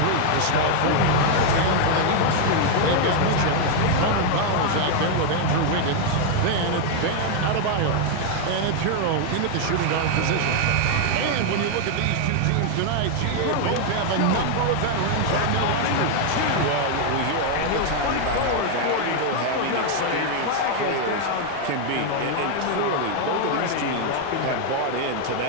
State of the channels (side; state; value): both; different; correlation 0.00